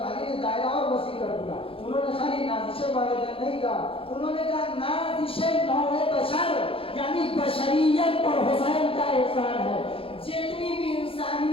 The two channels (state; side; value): late; right; 0.27 ms